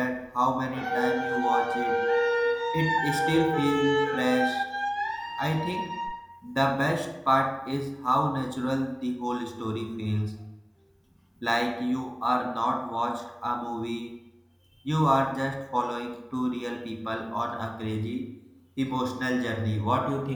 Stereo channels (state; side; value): identical; both; correlation 1.00